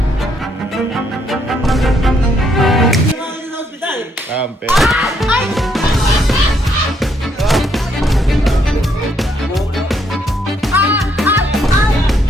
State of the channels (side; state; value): both; normal; correlation 0.72